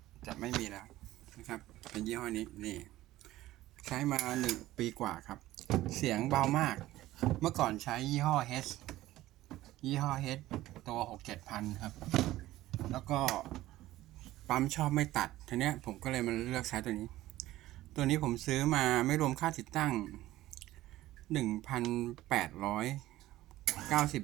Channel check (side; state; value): left; quieter; 15.9 dB